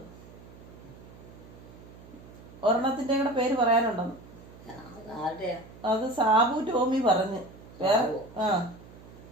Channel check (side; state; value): right; noise; hum, 19 dB below the sound